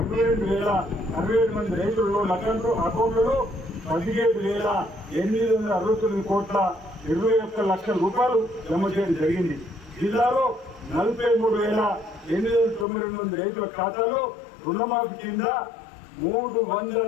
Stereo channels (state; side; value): drops out; right; at 12.9 s